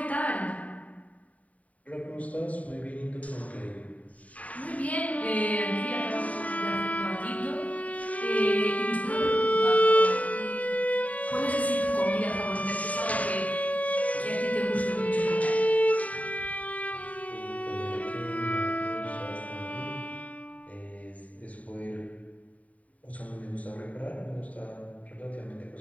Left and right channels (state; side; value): late; right; 0.069 ms